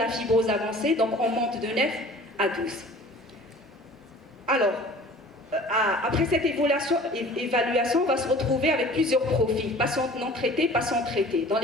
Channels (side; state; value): both; normal; correlation 0.46